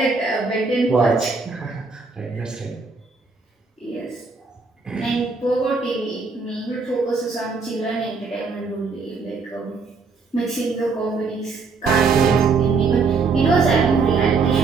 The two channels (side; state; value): left; quieter; 4.5 dB